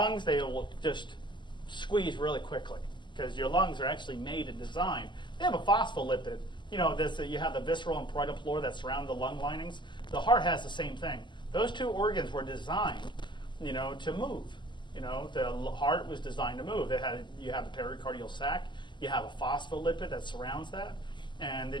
they will just squeeze really quickly, because your lungs are actually made and designed. They have a phospholipid. You have the visceral and parietal floor that surround the lung linings. The heart has the same thing. Those two organs were designed, to move. The heart was designed to move. You have the pericardial sac. You have a phospholipid that surrounds that. And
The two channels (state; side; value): late; right; 0.22 ms